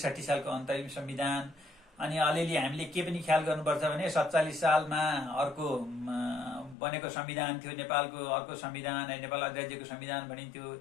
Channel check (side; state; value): right; drops out; at 6.8 s